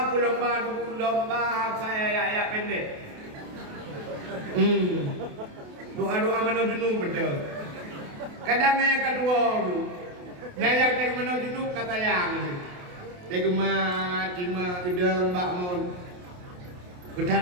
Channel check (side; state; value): left; late; 28 ms